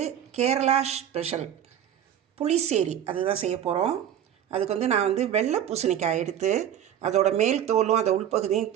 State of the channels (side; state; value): left; quieter; 10.2 dB